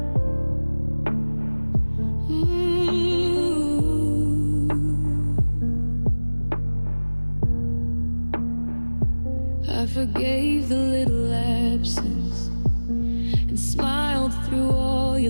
I forgave the little absence and smiled through all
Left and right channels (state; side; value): inverted; both; correlation -1.00